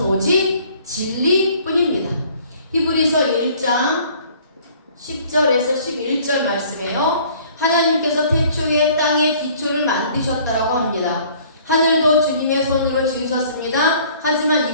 오직 진리뿐입니다. 히브리서 1장 10절에서 11절 말씀이에요. 하나님께서 태초에 땅의 기초를 만드셨다라고 합니다. 하늘도 주님의 손으로 지으셨습니다. 하지만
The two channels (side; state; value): both; inverted; correlation -0.55